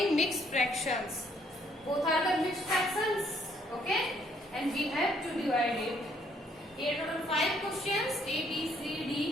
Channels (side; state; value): both; normal; correlation 0.67